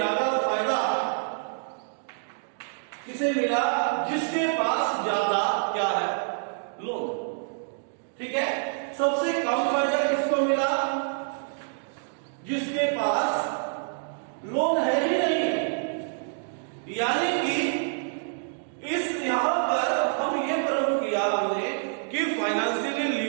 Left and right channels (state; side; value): silent; left; digital silence